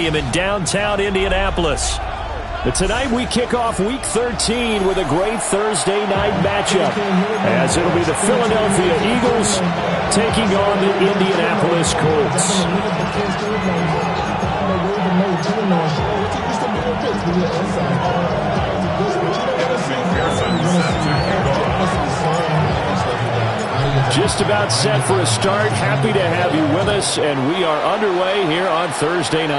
in downtown Indianapolis. But tonight we kick off Week 13 with a great Thursday night matchup, as it'll be the Philadelphia Eagles taking on the Indianapolis Colts. Just about set for a start. Happy to have you with us, and we are underway here on Thursday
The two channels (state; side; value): identical; both; correlation 1.00